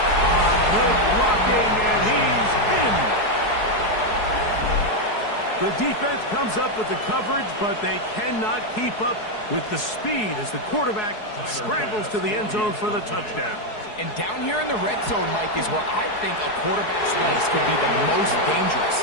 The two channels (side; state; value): right; late; 4.7 ms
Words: Good blocking, and he's in. The defense comes up with the coverage, but they cannot keep up with the speed as the quarterback scrambles to the end zone for the touchdown. And down here in the red zone, Mike, is where I think a quarterback's legs could be the most dangerous.